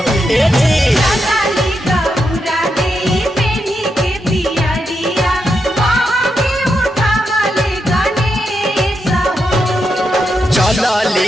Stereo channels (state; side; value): normal; both; correlation 0.84